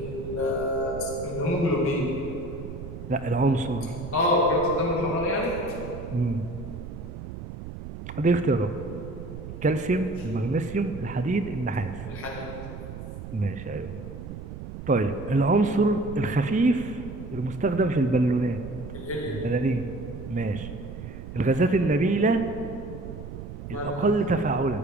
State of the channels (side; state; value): right; noise; rumble, 10 dB below the sound